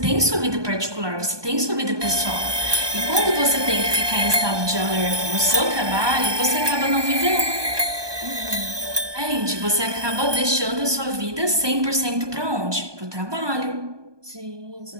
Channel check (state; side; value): late; left; 1.2 ms